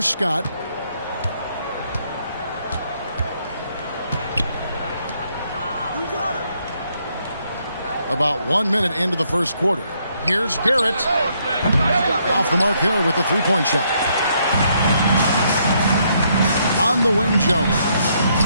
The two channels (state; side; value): inverted; both; correlation -0.72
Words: Scott. About 1 minute into the first quarter. Here's Garrett. Off the mark there with the three-point shot. On the wing, Jones.